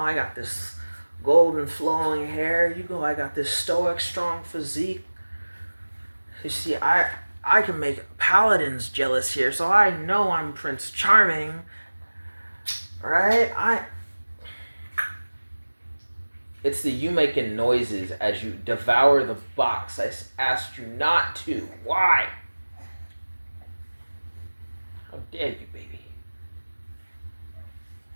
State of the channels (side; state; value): both; inverted; correlation -1.00